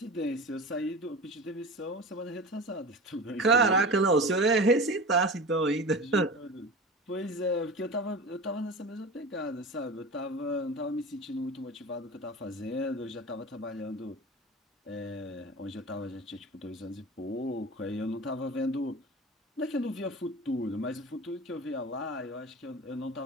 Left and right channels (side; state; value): both; normal; correlation 0.32